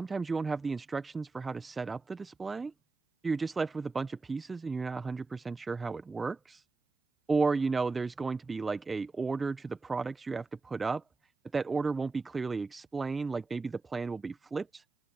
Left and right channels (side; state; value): left; quieter; 3.9 dB